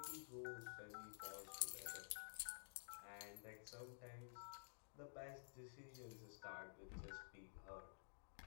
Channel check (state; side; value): silent; right; digital silence